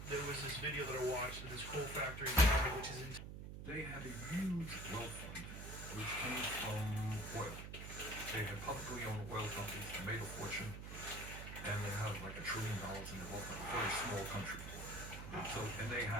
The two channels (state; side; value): noise; right; hum, 8 dB below the sound